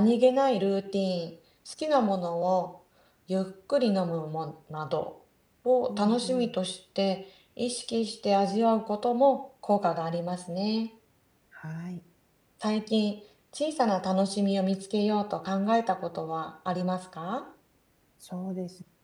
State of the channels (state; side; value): identical; both; correlation 1.00